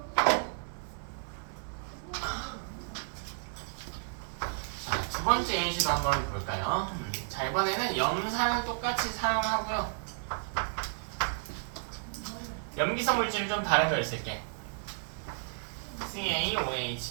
자, 두 번째 예시도 한번 볼까요? 자, 이번에는 염산을 똑같이 사용하고요. 염기성 물질을 좀 다른 걸 쓸게. CaOH2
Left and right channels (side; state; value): left; silent; 56 dB below the other